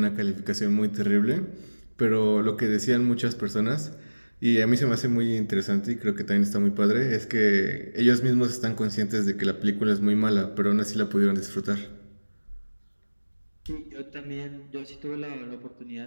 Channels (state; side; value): inverted; both; correlation -1.00